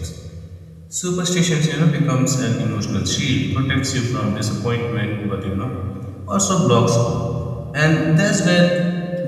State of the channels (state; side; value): identical; both; correlation 1.00